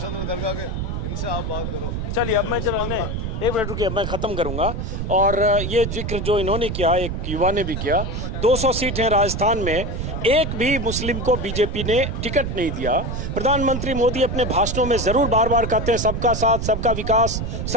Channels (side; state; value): right; noise; rumble, 4 dB below the sound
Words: दरगाह के, इनसे आप बात करो। चलिए अब मैं चलो एक मिनट रुकिए, मैं ख़त्म करूंगा। और ये जिक्र जो इन्होंने किया, एक युवा ने भी किया, 200 सीट हैं राजस्थान में, एक भी मुस्लिम को बीजेपी ने टिकट नहीं दिया। प्रधानमंत्री मोदी अपने भाषणों में जरूर बार बार कहते हैं सबका साथ, सबका विकास,